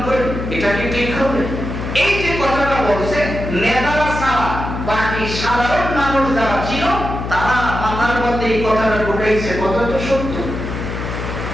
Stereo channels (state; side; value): noise; left; hum, 5 dB below the sound